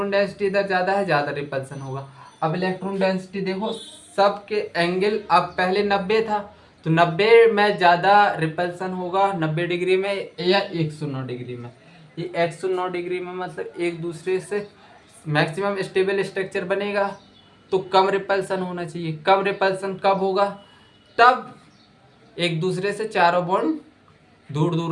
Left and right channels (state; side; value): identical; both; correlation 1.00